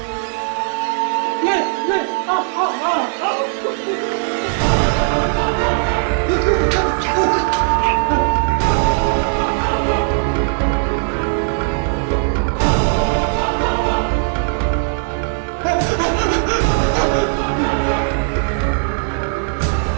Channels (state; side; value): silent; left; digital silence